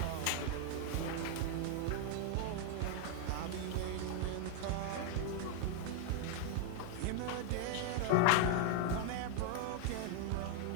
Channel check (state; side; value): different; both; correlation 0.00